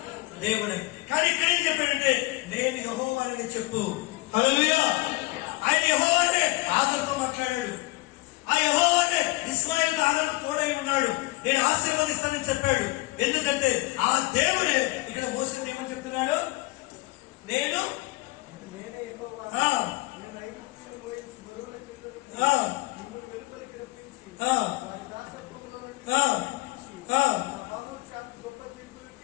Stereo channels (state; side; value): quieter; right; 22.0 dB